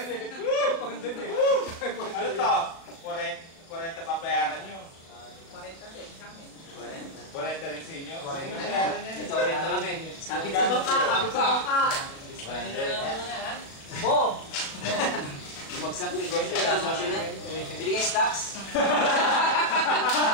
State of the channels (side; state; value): right; late; 36 ms